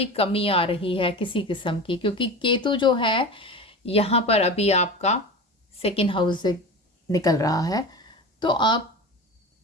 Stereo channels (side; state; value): both; normal; correlation 0.30